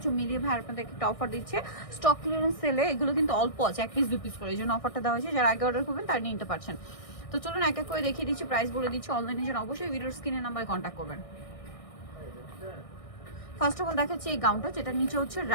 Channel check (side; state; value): right; late; 1.6 ms